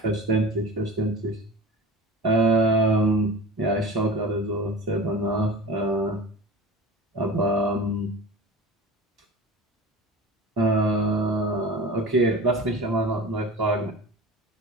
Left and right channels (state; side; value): normal; both; correlation 0.35